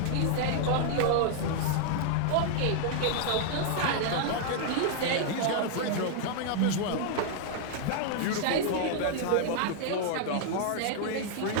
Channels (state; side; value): different; both; correlation 0.00